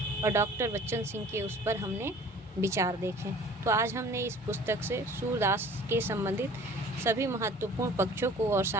और डॉक्टर बच्चन सिंह के उस पर हमने विचार देखे। तो आज हमने इस पुस्तक से सूरदास के संबंधित सभी महत्वपूर्ण पक्षों को और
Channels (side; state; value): both; normal; correlation 0.48